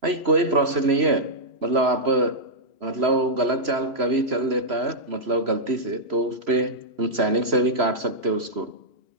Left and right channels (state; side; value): late; left; 3.0 ms